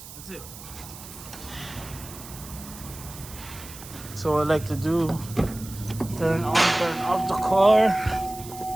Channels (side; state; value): right; noise; hiss, 15 dB below the sound